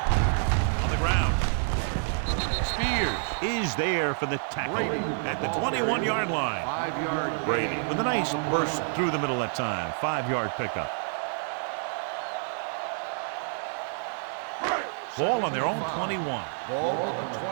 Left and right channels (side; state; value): left; silent; 59 dB below the other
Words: On the ground. Spears is there for the tackle at the 21-yard line. 5-yard Brady with a nice burst through the middle that time. 5-yard pickup. Ball on their own 21. Ball on the